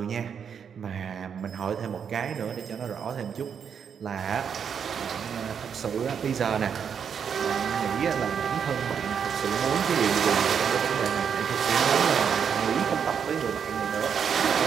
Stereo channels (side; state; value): left; quieter; 7.3 dB